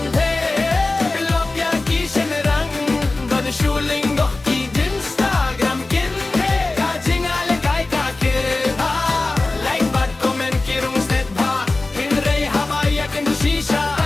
lop ya ki shenrang god shuling do ki Instagram Kynthei ka jingïalehkai ka kirha like bad comment kirung set ba hinrei habaya kin shisha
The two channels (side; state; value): right; quieter; 3.2 dB